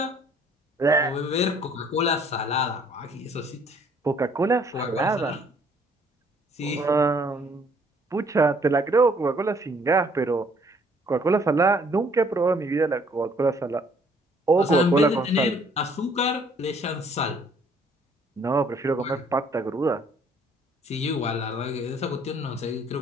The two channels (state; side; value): normal; both; correlation 0.62